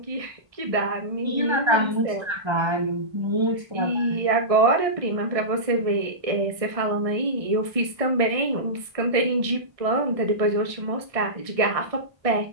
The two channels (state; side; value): late; left; 1.6 ms